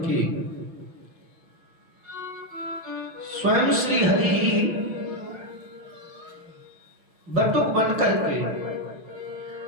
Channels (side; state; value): left; late; 5.6 ms